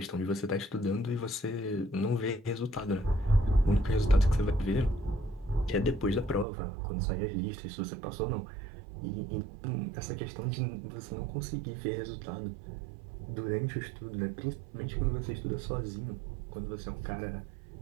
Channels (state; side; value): drops out; left; at 6.5 s